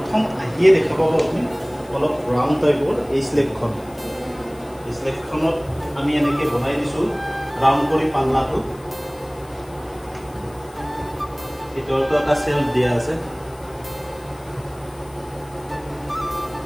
আহিয়ে দেখা পাব আপুনি অলপ ৰাউণ্ড টাইপৰ এই স্লেবখনত আমি এনেকৈ বনাই দিছো ৰাউণ্ড কৰি পাল্লাটো ভিতৰতো এটা সেলফ দিয়া আছে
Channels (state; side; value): noise; left; hiss, 25 dB below the sound